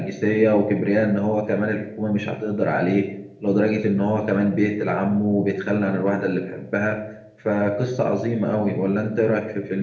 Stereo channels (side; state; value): both; identical; correlation 1.00